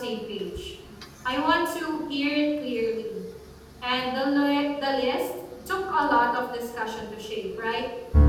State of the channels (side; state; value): both; identical; correlation 1.00